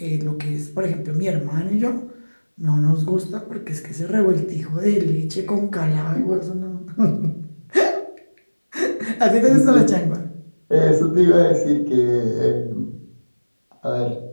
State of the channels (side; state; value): both; inverted; correlation -1.00